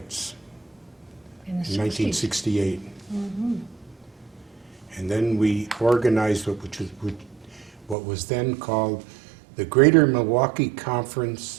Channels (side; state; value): left; drops out; at 8.0 s